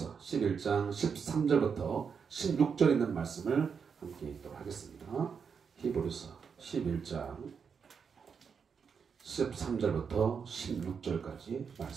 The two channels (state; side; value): quieter; left; 6.3 dB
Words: 11장 13절부터 16절 있는 말씀을 함께 읽도록 하겠습니다. 히브리서 11장 13절부터 16절까지